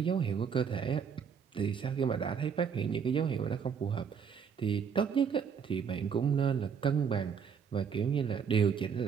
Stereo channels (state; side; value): quieter; left; 6.8 dB